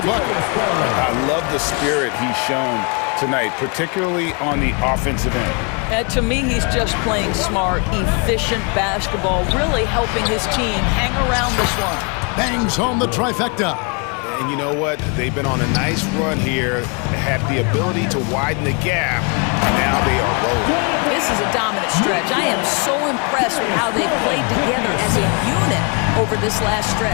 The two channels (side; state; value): right; quieter; 34.3 dB